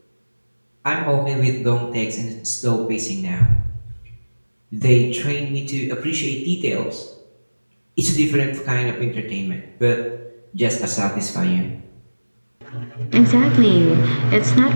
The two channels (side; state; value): both; inverted; correlation -1.00